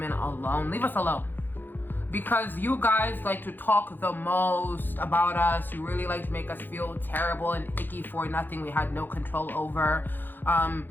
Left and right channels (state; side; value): late; right; 0.092 ms